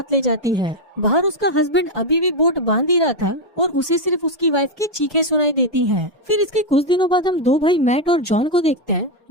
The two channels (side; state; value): both; normal; correlation 0.04